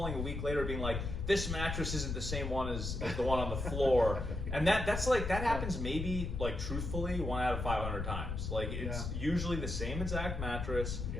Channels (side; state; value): left; noise; rumble, 4 dB below the sound